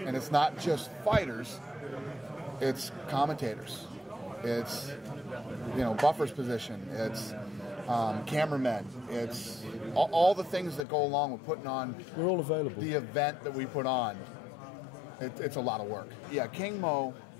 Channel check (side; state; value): right; drops out; at 10.9 s